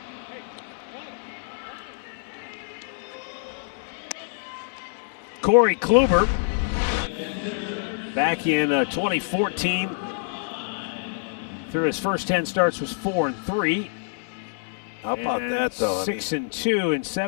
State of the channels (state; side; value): silent; right; 61 dB below the other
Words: Corey Kluber, back in 2014, through his first 10 starts was 4-3. How about that, though? 6-2 in